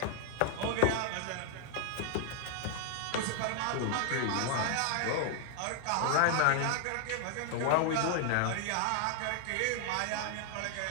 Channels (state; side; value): different; both; correlation 0.00